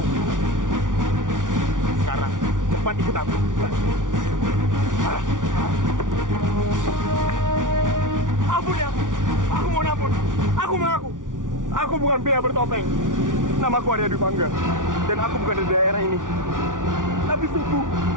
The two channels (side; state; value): left; late; 0.88 ms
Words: Sekarang cepat ikut aku. Ampun ya. Aku mohon ampun. Aku mengaku. Aku bukan pria bertopeng. Namaku Arya Dwi Pangga. Dan aku bukan dari daerah ini. Tapi sungguh,